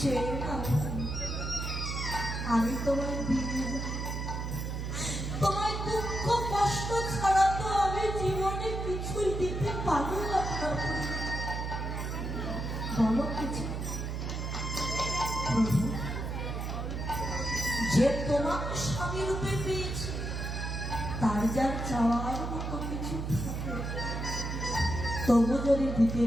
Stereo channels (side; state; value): right; noise; hum, 3 dB below the sound